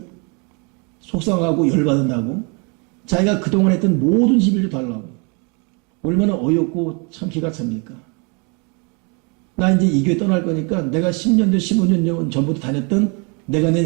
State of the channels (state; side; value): quieter; left; 33.2 dB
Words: 속상하고 열받는다고 자기가 그동안 했던 모든 시비를 달라고. 얼마나 어이없고 참 기가 찹니까? 나 이제 이 교회 떠날 거니까 내가 10년 전 15년 전부터 다녔던 내가 낸